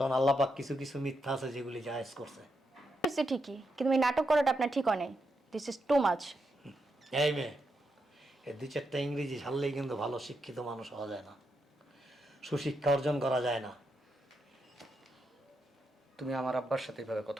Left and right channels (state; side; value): normal; both; correlation 0.83